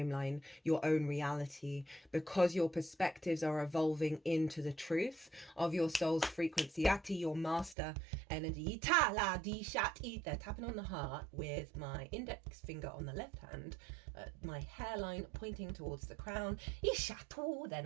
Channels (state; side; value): drops out; left; at 7.8 s